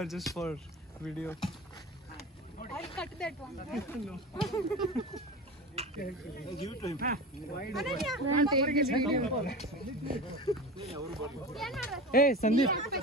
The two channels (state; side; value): normal; both; correlation 0.30